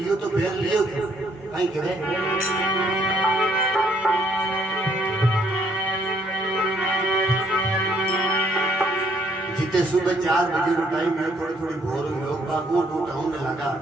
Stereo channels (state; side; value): normal; both; correlation 0.68